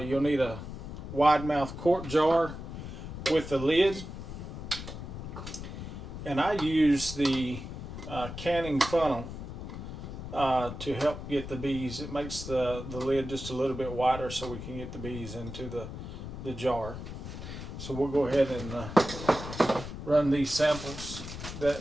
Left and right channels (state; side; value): noise; left; rumble, 9 dB below the sound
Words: need a wide mouth quart jar with a lid, and I use the canning funnel to help get the bees. It makes the lid just a little bit wider so we can get the bees into the jar. So we'll go ahead and run these samples